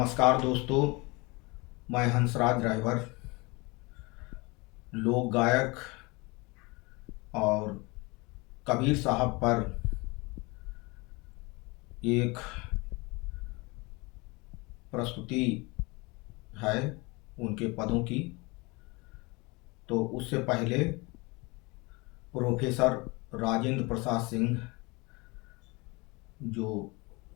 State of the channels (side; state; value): right; quieter; 26.1 dB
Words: दोस्तों, मैं हंसराज ड्राइवर, लोक गायक और कबीर साहब पर एक प्रस्तुति है उनके पदों की। तो उससे पहले प्रोफेसर राजेंद्र प्रसाद सिंह, जो